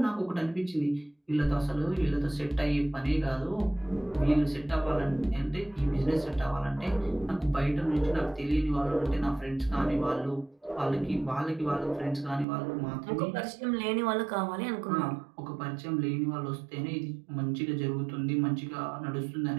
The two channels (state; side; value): drops out; left; at 12.5 s